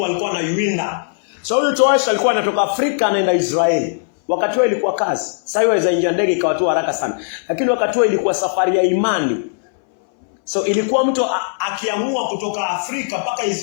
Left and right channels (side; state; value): right; silent; 63 dB below the other